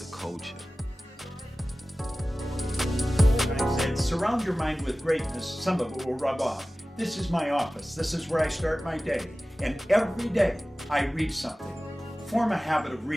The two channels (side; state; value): both; normal; correlation 0.97